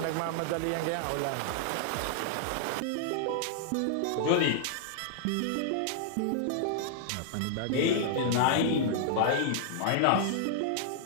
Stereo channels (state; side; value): different; both; correlation -0.01